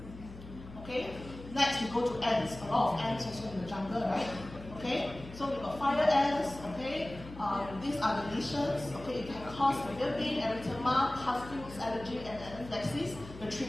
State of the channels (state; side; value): noise; left; hum, 15 dB below the sound